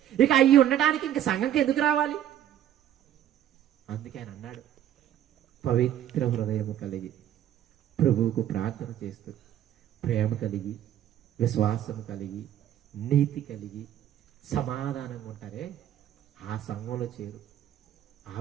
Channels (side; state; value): left; quieter; 11.0 dB